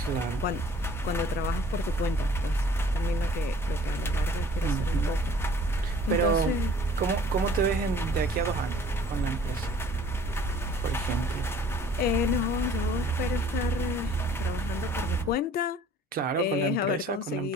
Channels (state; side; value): normal; both; correlation 0.53